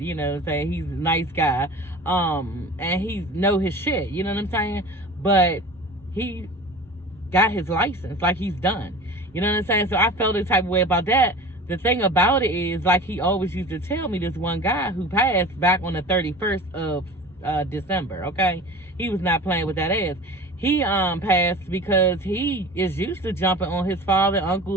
he's a nice guy, and he know his shit, you know what I'm saying? But he got his license, like he's done, you know what I'm saying? So I felt the type of way about that. The thing about it is, like he always used to tell me, this one guy who passed back on the 31st of December, okay? He was not playing with that ass. He passed because he is used to jumping on his father,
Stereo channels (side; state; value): both; normal; correlation 0.37